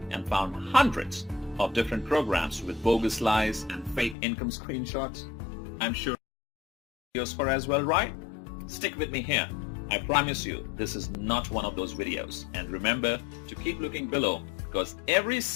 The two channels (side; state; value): right; drops out; at 4.2 s